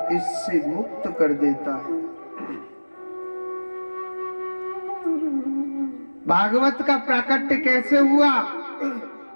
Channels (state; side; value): inverted; both; correlation -1.00